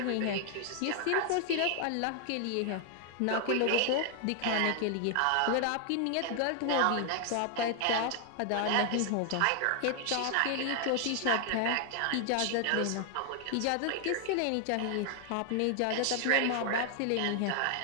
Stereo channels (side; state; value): both; different; correlation 0.00